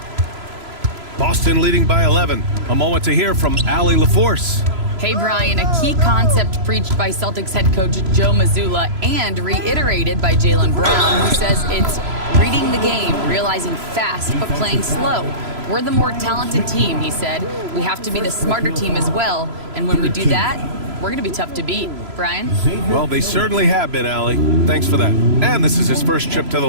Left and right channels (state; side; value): late; left; 3.0 ms